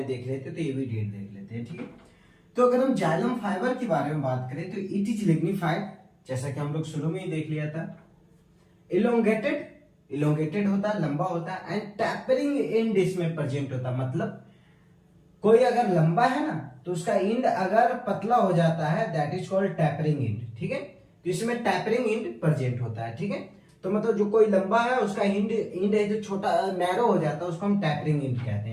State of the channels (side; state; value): both; identical; correlation 1.00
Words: देख रहे थे तो ये भी डेड देख लेते हैं, ठीक है। तो अगर हम जाइलम फाइबर के बारे में बात करें तो इट इज लिग्निफाइड, जैसा कि हम लोग शुरू में ही देख लिया था। इलोंगेटेड होता है, लंबा होता है, एंड टैपरिंग एंड इसमें प्रेजेंट होता है। मतलब कोई अगर लंबा है ना तो उसका एंड अगर पतला हो जाता है that is called tapering and, ठीक है। तो इसमें टैपरिंग एंड प्रेजेंट होता है, ठीक है। तो मतलब जो कोई लंबा है उसका एंड है जो छोटा नैरो हो जाता है उसको हम टैपरिंग एंड कहते